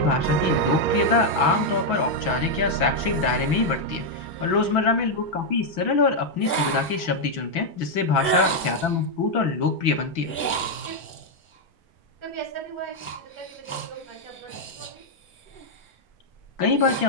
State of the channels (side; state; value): both; normal; correlation 0.00